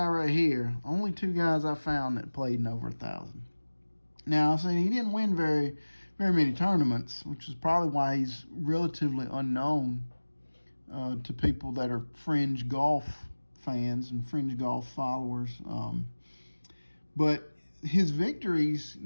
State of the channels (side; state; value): both; inverted; correlation -1.00